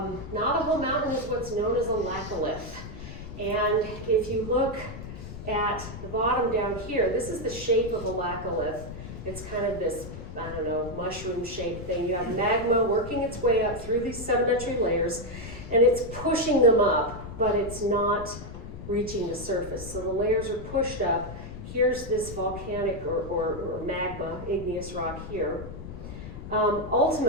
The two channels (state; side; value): noise; left; rumble, 11 dB below the sound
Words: Navajo Mountain is what's known as a laccolith. And if you look at the bottom down here, this is the shape of a laccolith. It's kind of this, I don't know, mushroom-shaped thing. You have magma working its way up through these sedimentary layers, and it's pushing them up, but it's not reaching the surface. So the layers are pushed up. Here's this volcanic or magma, igneous rock here.